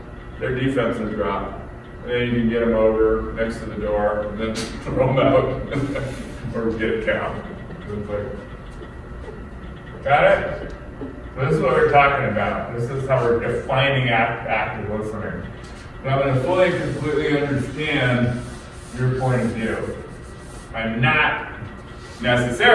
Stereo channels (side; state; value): both; identical; correlation 1.00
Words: their defenses drop. And then you can get them over next to the door, and then throw them out, or get a cow. It's like, Got it? So this is what we're talking about. This is how we're defining active listening. So I'm going to fully and completely understand your point of view. I'm not